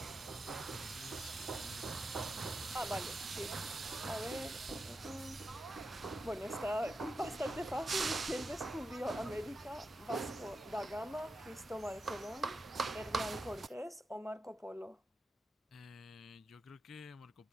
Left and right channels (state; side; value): normal; both; correlation 0.88